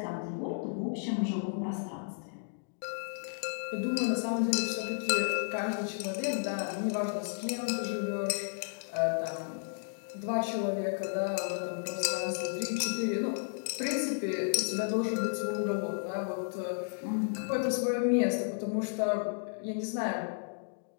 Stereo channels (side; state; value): right; silent; digital silence